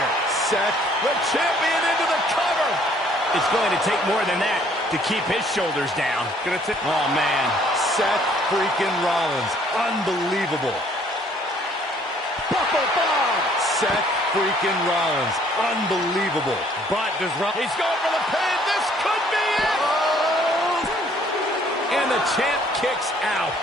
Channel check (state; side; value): normal; both; correlation 0.61